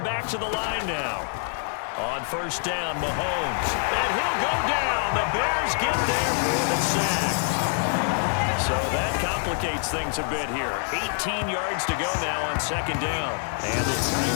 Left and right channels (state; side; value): silent; right; 55 dB below the other